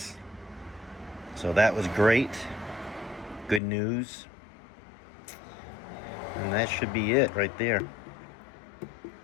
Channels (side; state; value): right; drops out; at 3.6 s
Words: so that was great. Good news. And that should be it right there.